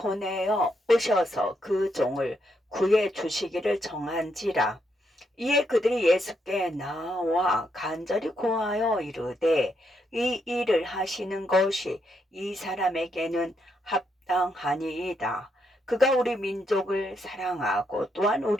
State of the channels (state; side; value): normal; both; correlation 0.78